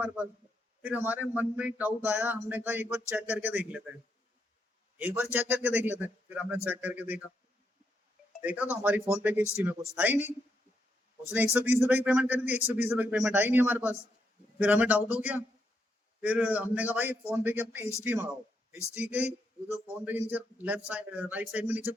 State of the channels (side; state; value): both; normal; correlation 0.80